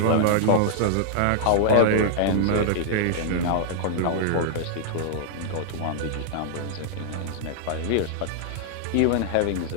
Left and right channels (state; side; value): different; both; correlation -0.01